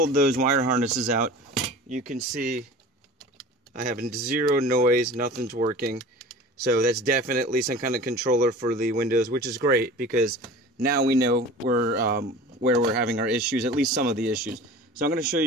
those wire harnesses out, you can see I have zero noise, nothing's working. So that's definitely some kind of controller for the windows, which is great because now we know where we're having our issues, at least some of the issues. So I'm going to show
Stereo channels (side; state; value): both; normal; correlation 0.39